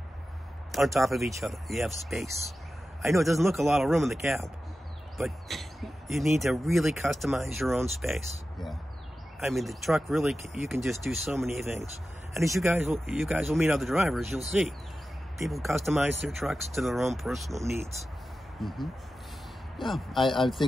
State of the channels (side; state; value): both; normal; correlation 0.93